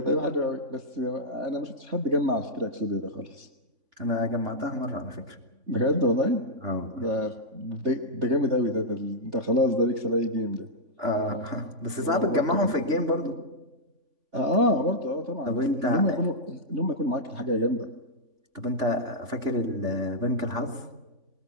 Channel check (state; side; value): late; left; 3.5 ms